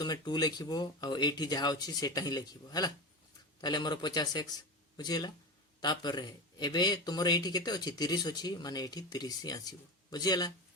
2 लिखिबो आ एठी जहा अछि सेटा ही लिखिबो हला ताले हमर 50x बुझिला तापर एबे तुमर एठी केते अछि 30 अछि माने एठी 30 ही आसीबो बुझिला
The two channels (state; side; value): normal; both; correlation 0.24